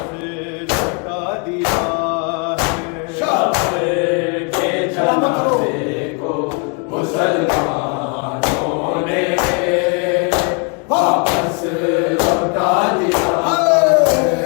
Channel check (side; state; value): right; quieter; 35.5 dB